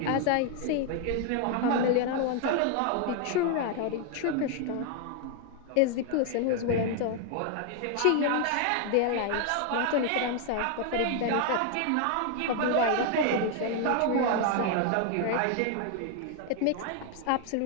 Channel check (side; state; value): both; different; correlation 0.00